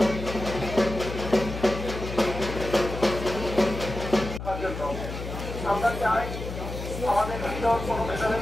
আমরা চাই আমাদের ভিতর কোনো মেধাবী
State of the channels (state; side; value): noise; left; hum, 7 dB below the sound